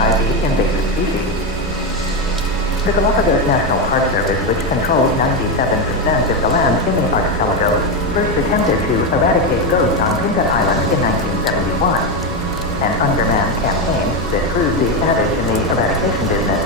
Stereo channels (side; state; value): both; normal; correlation 0.10